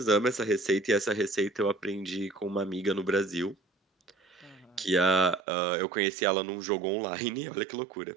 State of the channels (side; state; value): left; drops out; at 5.4 s